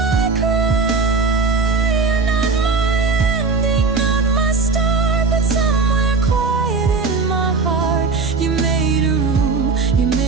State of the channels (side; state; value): left; quieter; 4.5 dB